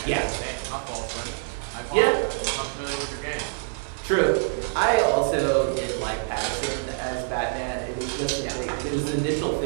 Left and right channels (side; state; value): left; silent; 59 dB below the other